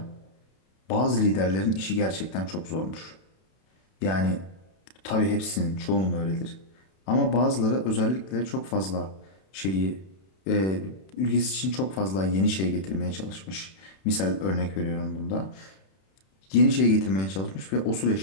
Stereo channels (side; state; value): right; late; 31 ms